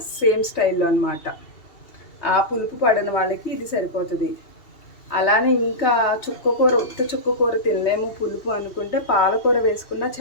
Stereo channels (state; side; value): late; right; 2.8 ms